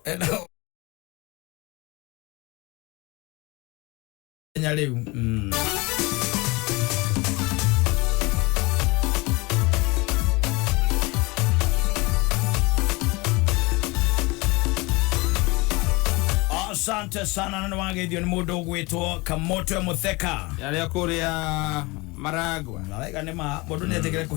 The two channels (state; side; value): quieter; right; 24.6 dB